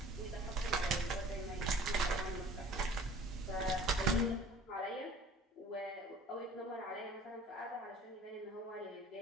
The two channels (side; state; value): both; normal; correlation 0.47